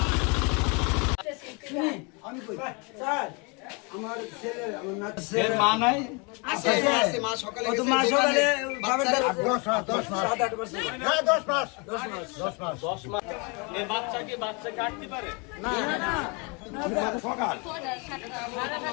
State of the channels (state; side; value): quieter; right; 31.7 dB